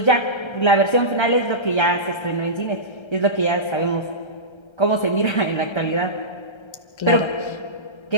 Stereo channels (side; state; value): right; late; 1.3 ms